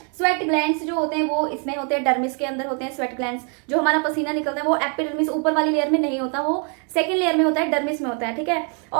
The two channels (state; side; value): quieter; left; 39.3 dB